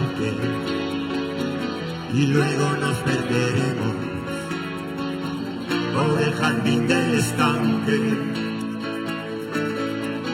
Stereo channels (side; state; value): both; identical; correlation 1.00